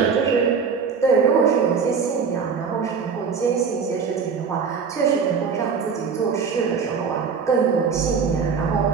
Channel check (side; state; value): left; quieter; 5.8 dB